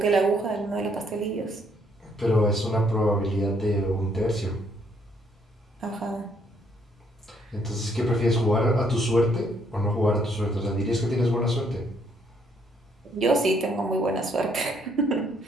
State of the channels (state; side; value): normal; both; correlation 0.69